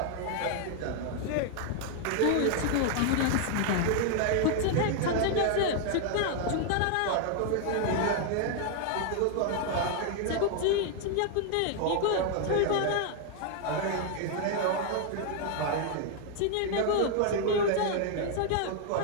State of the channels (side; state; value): both; different; correlation 0.00